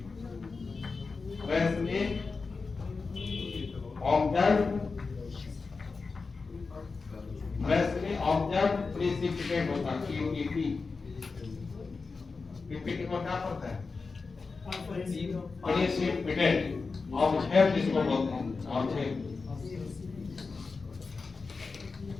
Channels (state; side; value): quieter; right; 4.4 dB